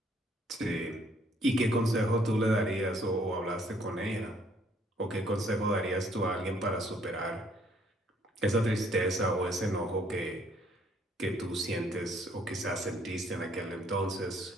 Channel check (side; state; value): both; normal; correlation 0.64